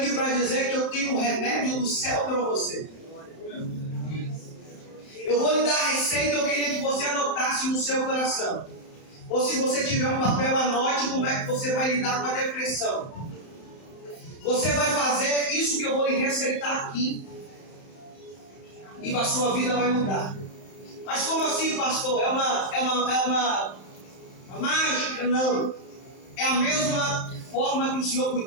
para dizer que eu tenho um remédio do céu para você. Eu vou lhe dar a receita, eu queria que você anotasse no seu coração. Ou se você tiver um papel, anote como é que você vai lidar com a depressão. Você vai fazer isso que eu vou lhe receitar aqui. E a sua vida vai mudar. Mas como assim, pastor? É uma mágica? Não. É a mesma forma que o Senhor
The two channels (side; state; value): right; late; 31 ms